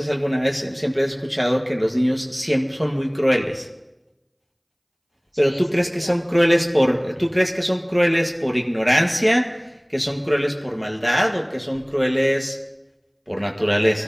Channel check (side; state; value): both; identical; correlation 1.00